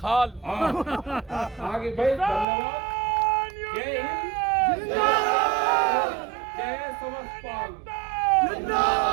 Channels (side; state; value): left; drops out; at 2.5 s